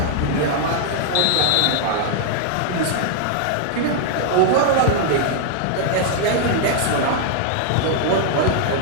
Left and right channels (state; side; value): different; both; correlation 0.00